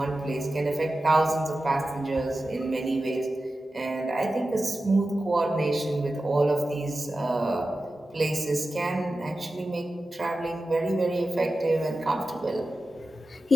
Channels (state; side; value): normal; both; correlation 0.93